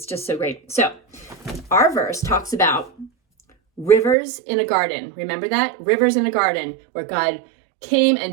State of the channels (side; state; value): left; drops out; at 4.2 s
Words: just so great. So, our verse talks about rivers in a garden. Remember that? Rivers in a garden where God came